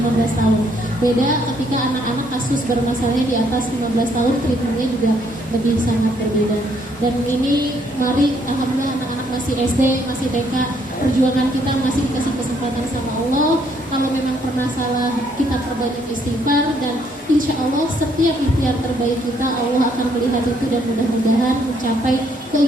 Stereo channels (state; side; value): normal; both; correlation 0.69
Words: tahun. Beda ketika anak-anak kasus bermasalahnya di atas 15 tahun, treatmentnya juga lebih sangat berbeda. Dan ini mari alhamdulillah anak-anak masih SD, masih TK, perjuangan kita masih dikasih kesempatan sama Allah. Kalau memang pernah salah, kita perbanyak istighfar, dan insya Allah setiap ikhtiar terbaik kita Allah akan melihat itu, dan mudah-mudahan mencapai